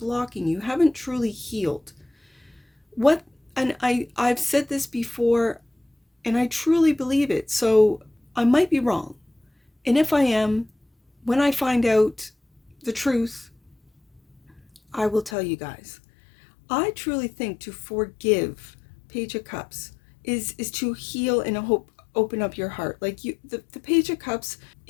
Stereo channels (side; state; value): right; drops out; at 15.4 s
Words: you, haven't truly healed. And I've said this before, and I truly believe it, so I might be wrong. And if I am, when I find out the truth, I will tell you guys. I truly think to forgive, Page of Cups, is to heal and open up your heart. Like the Page of Cups